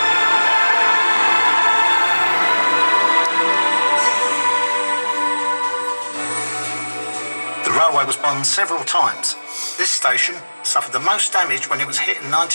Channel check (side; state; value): both; inverted; correlation -1.00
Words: The railway was bombed several times. This station suffered the most damage when it was hit in